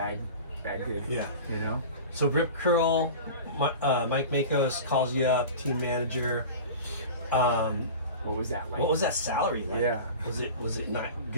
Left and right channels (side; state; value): both; inverted; correlation -0.34